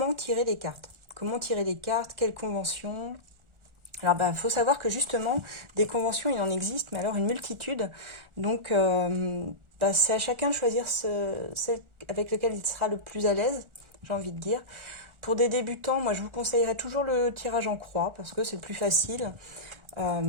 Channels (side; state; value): left; late; 1.4 ms